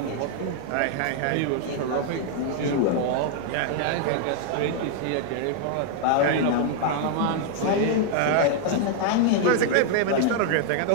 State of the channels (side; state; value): both; different; correlation 0.00